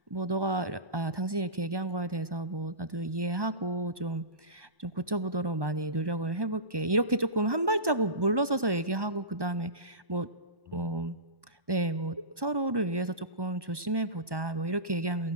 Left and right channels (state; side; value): late; left; 1.1 ms